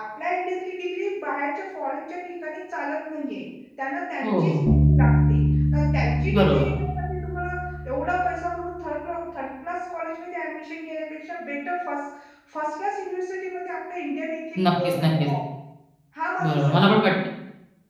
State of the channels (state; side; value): identical; both; correlation 1.00